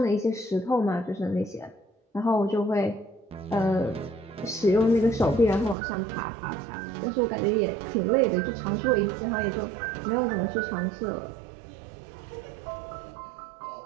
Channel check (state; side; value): drops out; left; at 5.8 s